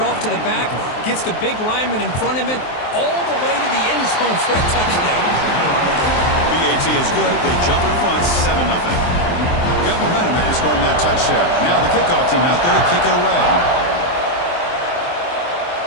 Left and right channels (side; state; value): right; late; 23 ms